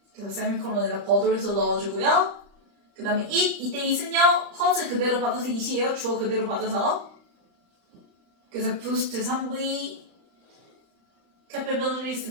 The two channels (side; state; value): left; late; 35 ms